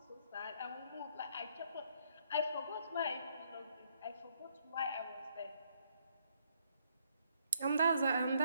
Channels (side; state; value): both; inverted; correlation -0.71